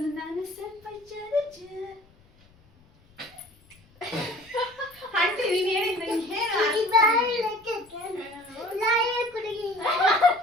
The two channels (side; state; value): left; noise; rumble, 30 dB below the sound